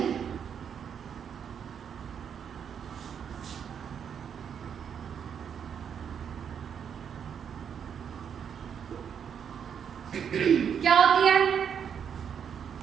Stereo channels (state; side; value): quieter; left; 7.8 dB